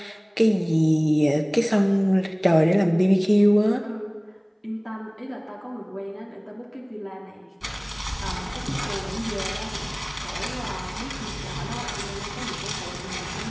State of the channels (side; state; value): both; identical; correlation 1.00